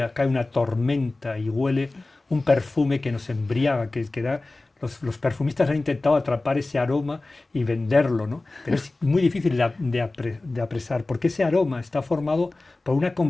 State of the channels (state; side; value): quieter; right; 3.1 dB